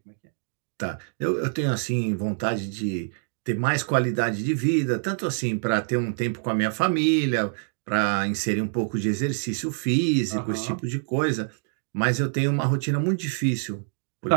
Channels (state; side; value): silent; left; digital silence